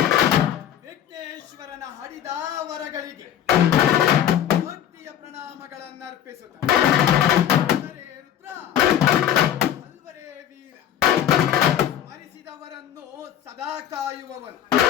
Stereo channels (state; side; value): quieter; right; 10.6 dB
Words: ವಿಘ್ನೇಶ್ವರನ ಹಡಿದಾವರಗಳಿಗೆ ಭಕ್ತಿಯ ಪ್ರಣಾಮಗಳನ್ನರ್ಪಿಸುತ್ತ ರುದ್ರ ಅಲ್ವರೇ ವೀರ ಸ್ಮರಿಸಿದವರನ್ನು ಸದಾ ಕಾಯುವವನು